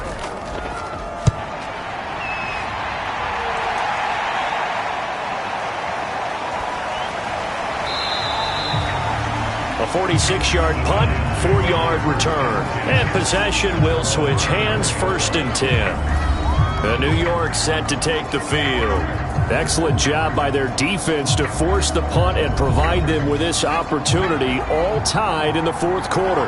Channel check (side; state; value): both; identical; correlation 1.00